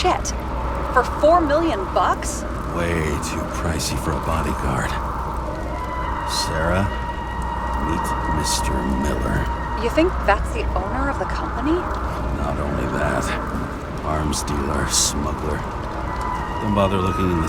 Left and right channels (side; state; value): both; identical; correlation 1.00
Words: For $4 million bucks? Way too pricey for a bodyguard. Sarah, meet Mr. Miller. You think that's the owner of the company? Not only that, arms dealer, smuggler. Don't bother looking in the